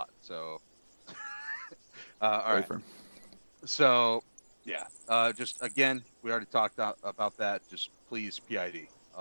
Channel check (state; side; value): inverted; both; correlation -1.00